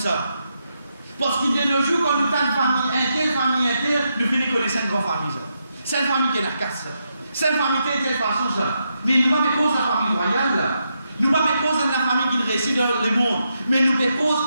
Parce qu'il de nos jours, quand nous avons une famille interne, nous finissons connaître une grande famille. C'est une famille qui est la casse. C'est une famille qui est de telle façon. Mais nous ne pas cause de la famille royale. Nous ne pas cause de la famille qui réside dans le monde. Mais nous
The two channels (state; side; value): inverted; both; correlation -0.83